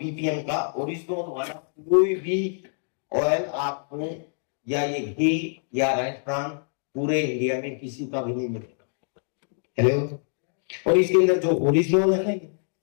का ओरिजिनल वाला कोई भी ऑयल आपको, या ये घी या राजस्थान, पूरे इंडिया में किसी का भी नहीं मिलेगा। हेलो, और इसके अंदर जो ओरिजिनल है ना,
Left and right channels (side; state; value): right; silent; digital silence